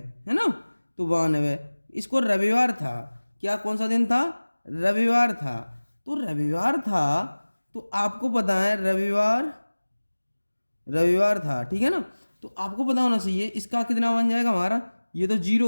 है ना, तो 92, इसको रविवार था, क्या कौन सा दिन था, रविवार था, तो रविवार था, तो आपको पता है रविवार था, ठीक है ना। तो आपको पता होना चाहिए इसका कितना बन जाएगा हमारा, ये तो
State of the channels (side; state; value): both; inverted; correlation -1.00